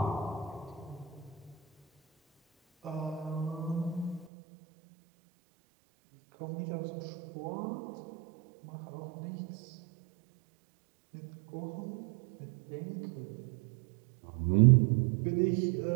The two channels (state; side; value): drops out; left; at 4.3 s